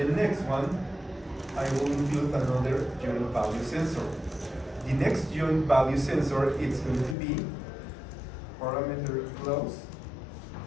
next one, I will include another joint value sensor. The next joint value sensor is going to be parameter close.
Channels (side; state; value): right; drops out; at 7.2 s